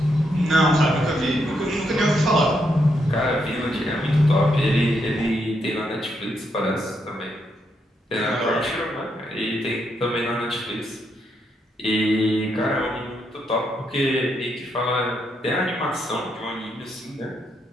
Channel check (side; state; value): both; normal; correlation 0.79